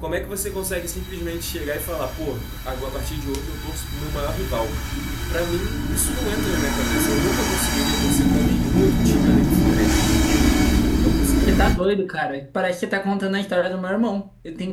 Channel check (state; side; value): identical; both; correlation 1.00